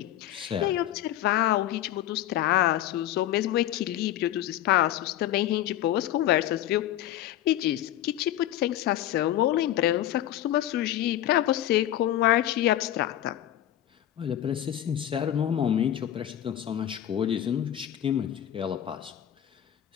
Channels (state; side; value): quieter; right; 12.3 dB